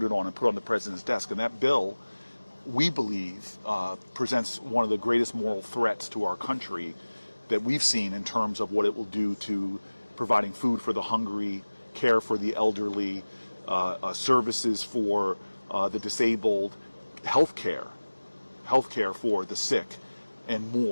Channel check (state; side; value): inverted; both; correlation -1.00